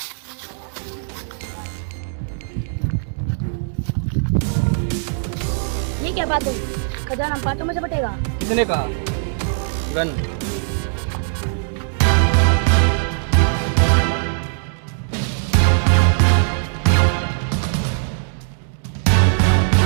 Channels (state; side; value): silent; left; 66 dB below the other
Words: ये क्या बात हुई? खजाना बातों में से बटेगा। किसने कहा? गन।